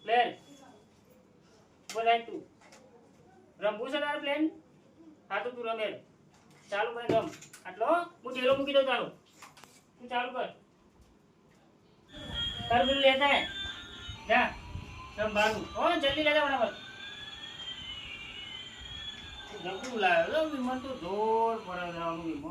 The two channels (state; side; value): identical; both; correlation 1.00